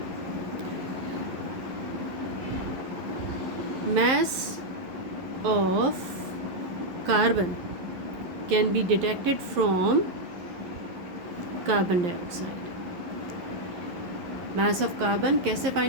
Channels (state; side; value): late; left; 11 ms